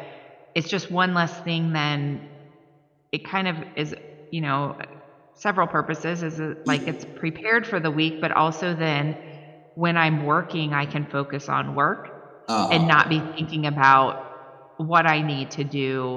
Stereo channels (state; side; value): identical; both; correlation 1.00